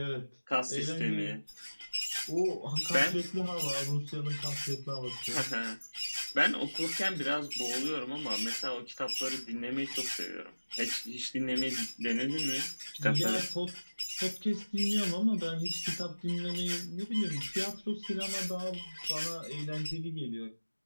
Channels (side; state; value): both; inverted; correlation -1.00